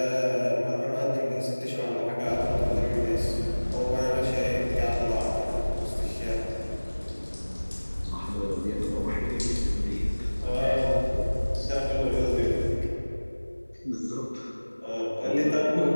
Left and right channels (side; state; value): both; inverted; correlation -1.00